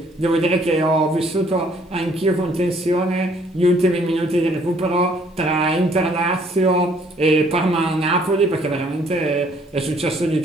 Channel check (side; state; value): both; normal; correlation 0.62